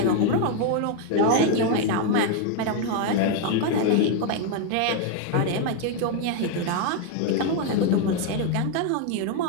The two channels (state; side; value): different; both; correlation 0.01